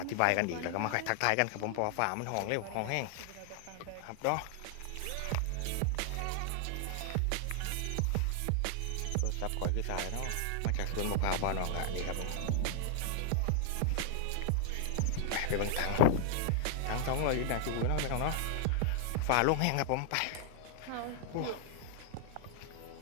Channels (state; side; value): different; both; correlation 0.00